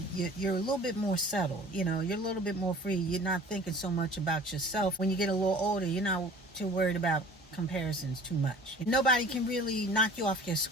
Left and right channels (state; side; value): normal; both; correlation 0.45